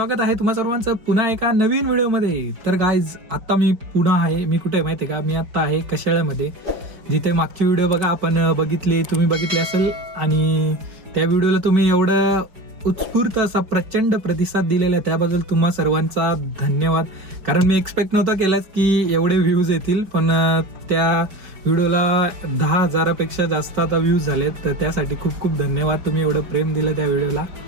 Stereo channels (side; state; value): left; late; 5.1 ms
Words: आहे तुम्हा सर्वांचं पुन्हा एका नवीन व्हिडिओमध्ये. तर गाईज, आता मी पुन्हा आहे. मी कुठे आहे माहिती आहे का? मी आता आहे कशाळ्यामध्ये, जिथे मागची व्हिडिओ बघा आपण तुम्ही बघितली असेल. आणि त्या व्हिडिओला तुम्ही एवढं उत्स्फूर्त असा प्रचंड प्रतिसाद दिलेला आहे, त्याबद्दल तुम्हा सर्वांचा धन्यवाद. कारण मी एक्सपेक्ट नव्हतं केलंच की एवढे व्ह्यूज येतील, पण त्या व्हिडिओला 10,000पेक्षा जास्त आता व्ह्यूज झालेत. तर त्यासाठी खूप खूप धन्यवाद, तुम्ही एवढं प्रेम दिलं त्या व्हिडिओला.